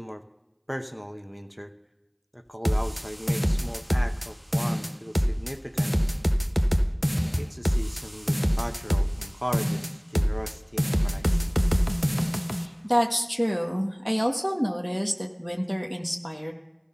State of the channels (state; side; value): identical; both; correlation 1.00